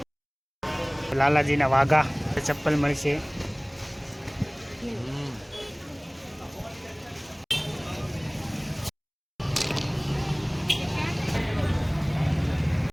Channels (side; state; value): both; identical; correlation 1.00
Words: લાલાજીના વાઘા ચપ્પલ મળશે.